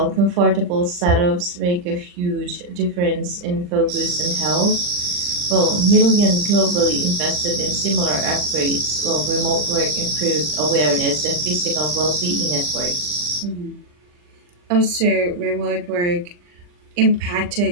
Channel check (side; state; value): left; late; 40 ms